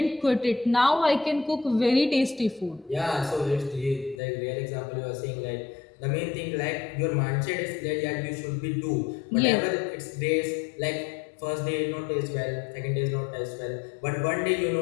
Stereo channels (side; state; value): right; drops out; at 4.2 s